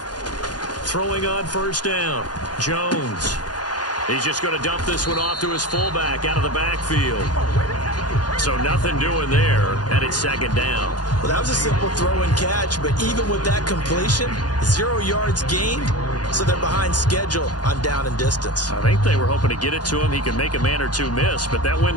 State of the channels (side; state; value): right; late; 0.69 ms